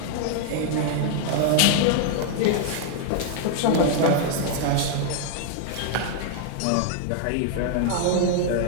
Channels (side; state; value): both; different; correlation -0.01